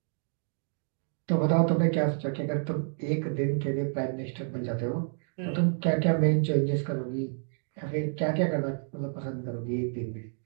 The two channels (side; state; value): left; silent; digital silence